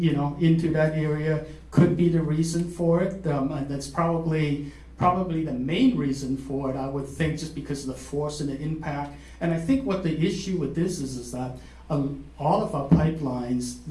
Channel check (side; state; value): both; identical; correlation 1.00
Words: into that area could be the reason for it. And that's probably the main reason for it, I would think, just because of the force and the impact. And I think what the issue with this is that all of our pipelines,